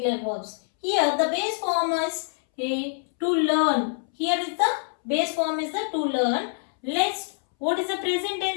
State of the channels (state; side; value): silent; right; 61 dB below the other